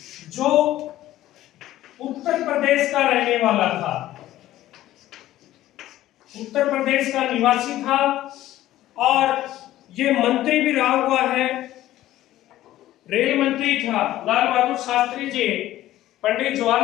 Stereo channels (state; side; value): quieter; right; 14.4 dB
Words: जो उत्तर प्रदेश का रहने वाला था, उत्तर प्रदेश का निवासी था और ये मंत्री भी रहा हुआ है, रेल मंत्री था। लाल बहादुर शास्त्री जी पंडित